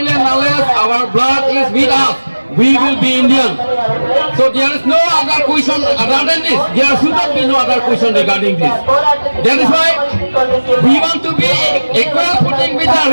and unless our blood is with us. We will be Indian. So there is no other question other than this. There should not be no other question regarding this. That is why we want to be equal footing with the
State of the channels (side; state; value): both; inverted; correlation -1.00